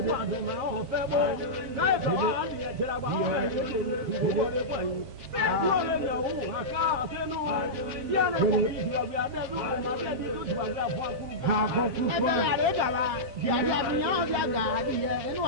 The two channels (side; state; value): left; late; 7.5 ms